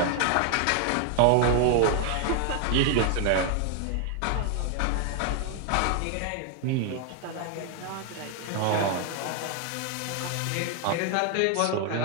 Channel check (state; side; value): different; both; correlation 0.00